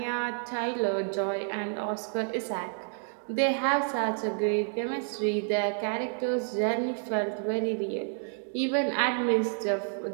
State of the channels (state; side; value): silent; left; 58 dB below the other